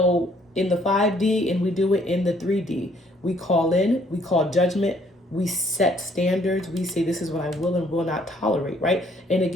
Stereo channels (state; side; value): normal; both; correlation 0.64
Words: the 5D, and we do it in the 3D. We call in, we call judgment, we set standards, we say this is what I will and will not tolerate, right? And